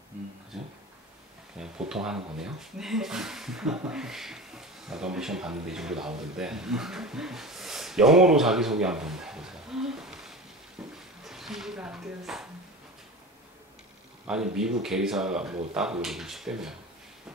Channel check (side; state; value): both; normal; correlation 0.31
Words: 그죠? 그냥 보통 하는 거네요. 네. 나도 한번 시험 봤는데 이 정도 나오던데. 영어로 자기소개 한번 해보세요. 준비가 안 되었습니다. 아니 미국 계리사 뭐 따고 이러고 싶다며.